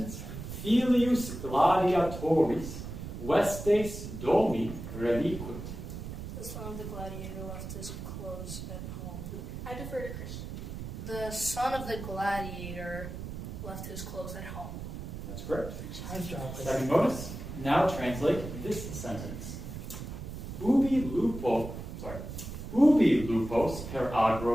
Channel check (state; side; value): noise; right; rumble, 8 dB below the sound